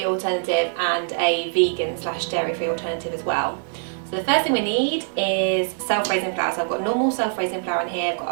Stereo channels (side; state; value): left; silent; 63 dB below the other